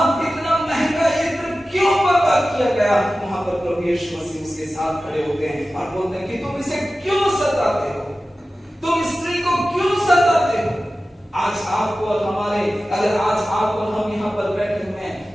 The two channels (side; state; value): both; normal; correlation 0.95